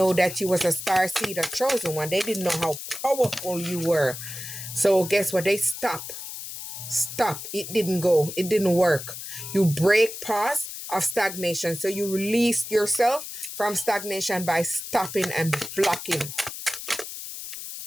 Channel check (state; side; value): noise; left; hiss, 9 dB below the sound